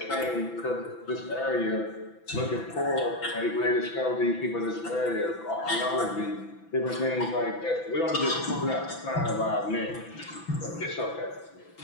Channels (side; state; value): right; late; 6.0 ms